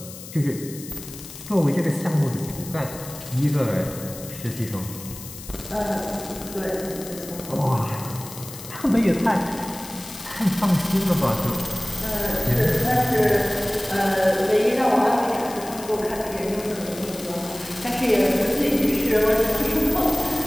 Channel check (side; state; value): left; noise; hiss, 14 dB below the sound